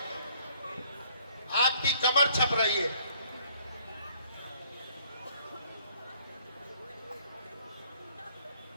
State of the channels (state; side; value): inverted; both; correlation -0.61